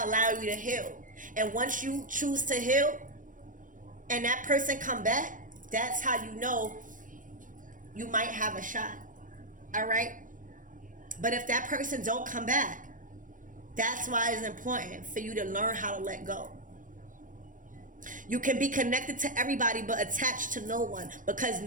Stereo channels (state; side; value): late; left; 0.38 ms